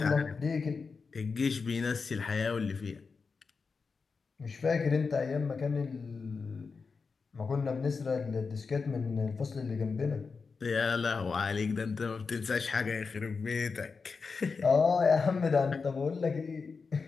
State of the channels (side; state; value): right; quieter; 4.8 dB